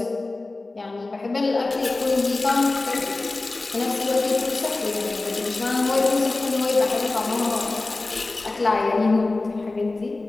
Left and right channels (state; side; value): quieter; right; 3.3 dB